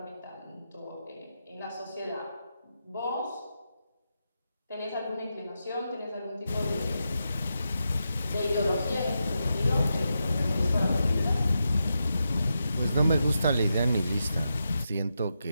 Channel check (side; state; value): both; inverted; correlation -0.87